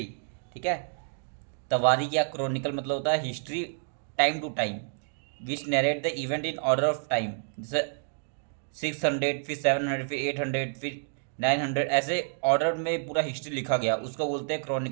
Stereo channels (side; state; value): left; silent; digital silence